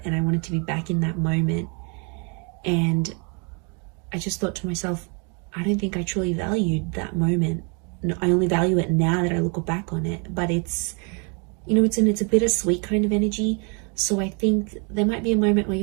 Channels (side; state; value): left; quieter; 35.4 dB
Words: and I wanted to be back in that moment. And I just thought to myself, I don't think I truly valued that moment. I only value it now that I look back on it. But it's, you know, it's a bittersweet kind of energy. So I think there might be a moment where